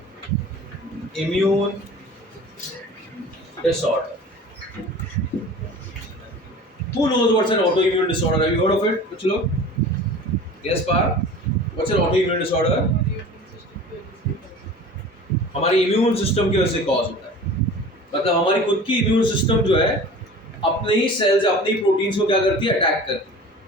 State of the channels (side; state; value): both; normal; correlation 0.40